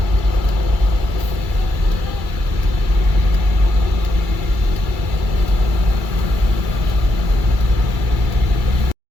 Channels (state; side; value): late; left; 2.3 ms